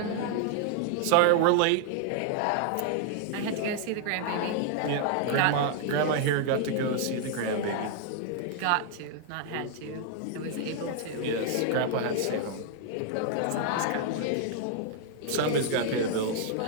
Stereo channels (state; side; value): different; both; correlation 0.00